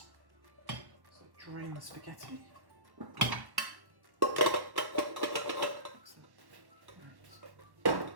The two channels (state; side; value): late; left; 1.1 ms